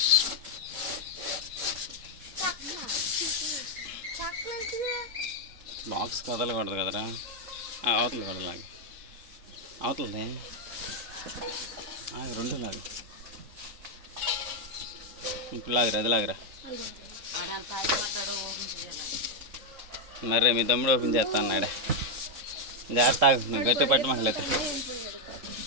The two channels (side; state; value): left; late; 3.7 ms